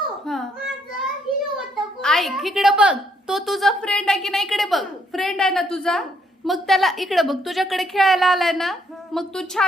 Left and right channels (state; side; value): normal; both; correlation 0.71